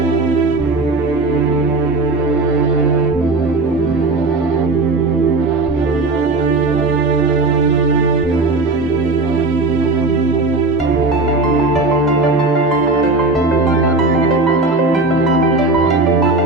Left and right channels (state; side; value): quieter; left; 3.3 dB